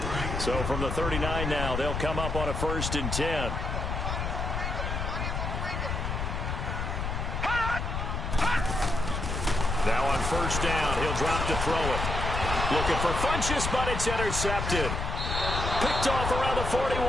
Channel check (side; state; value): left; noise; rumble, 2 dB below the sound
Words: So from the 39 now, they'll come up on a 1st and 10. Now on 1st down, he'll drop to throw it. Looking for Funchess, but it's intercepted. Picked off around the